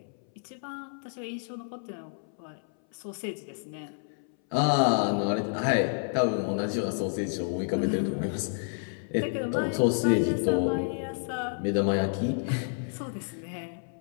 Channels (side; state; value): right; silent; 58 dB below the other